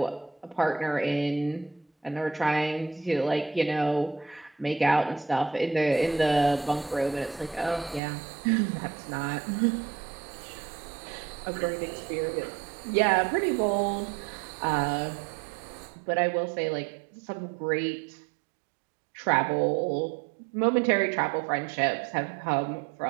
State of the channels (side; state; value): left; drops out; at 8.0 s